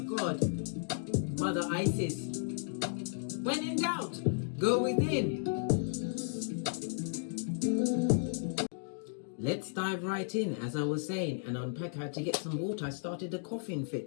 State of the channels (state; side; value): silent; right; digital silence